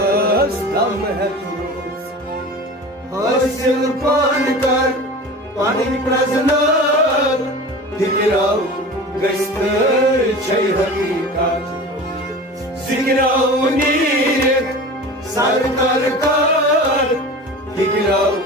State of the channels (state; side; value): normal; both; correlation 0.35